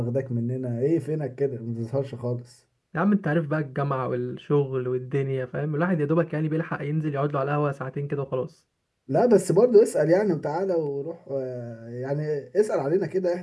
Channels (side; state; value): both; identical; correlation 1.00